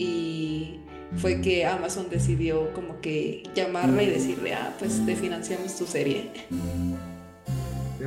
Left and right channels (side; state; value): both; identical; correlation 1.00